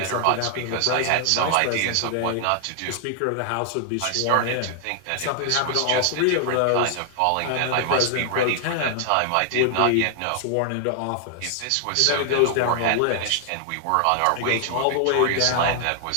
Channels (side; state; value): both; different; correlation 0.00